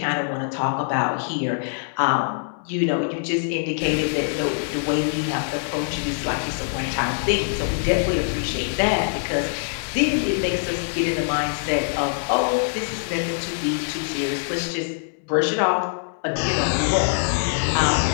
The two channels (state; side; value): silent; right; digital silence